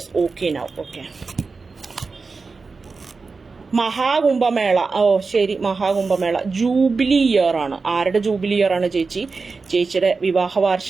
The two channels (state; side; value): quieter; left; 4.4 dB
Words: okay now. Okay. Mahakumbh Mela, ഓ ശരി, മഹാകുംഭമേള ജൂബിലി ഇയർ ആണ്. ആരുടെ ജൂബിലി ഇയർ ആണ് ചേച്ചി? ചേച്ചിയുടെ വിവാഹ